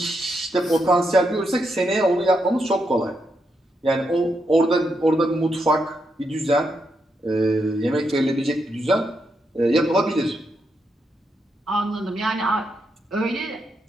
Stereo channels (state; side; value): normal; both; correlation 0.82